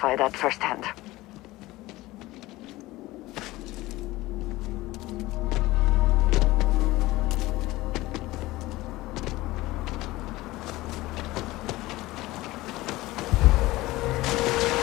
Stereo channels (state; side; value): quieter; right; 18.8 dB